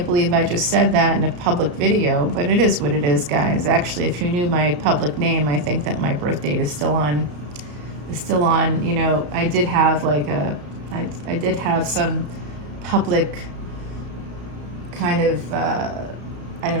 believe I just said that in a public video, but it is what it is, guys. Actually, if you knew my public name, I think that my birth date is still on still on, you know, I did have like I did have some public kind of, I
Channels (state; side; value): late; left; 34 ms